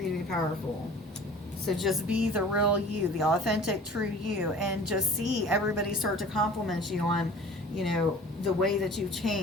you to be powerful. So just be the real you, the authentic, true you, and just see everybody start to compliment you on, the way that you've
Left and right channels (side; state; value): both; normal; correlation 0.44